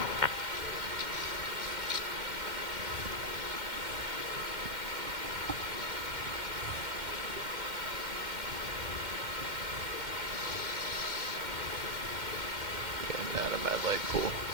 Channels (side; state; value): left; late; 2.1 ms